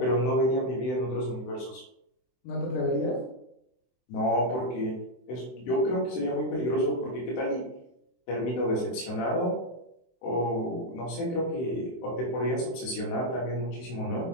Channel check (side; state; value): right; late; 24 ms